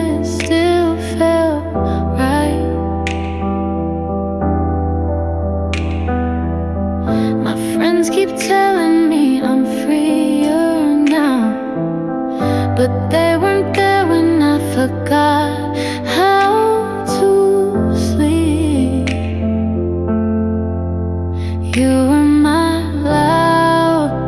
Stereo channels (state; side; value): noise; right; rumble, 25 dB below the sound